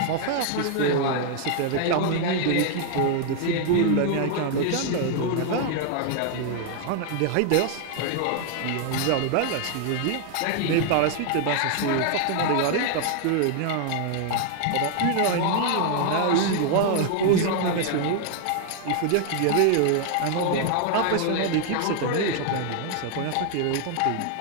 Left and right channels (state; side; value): different; both; correlation 0.00